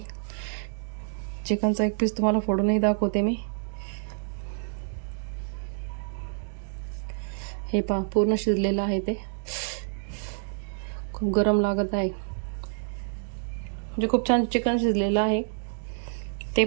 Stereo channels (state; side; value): silent; left; digital silence